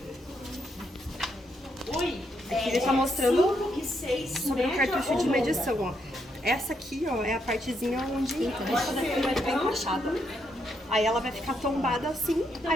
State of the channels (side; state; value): both; normal; correlation 0.78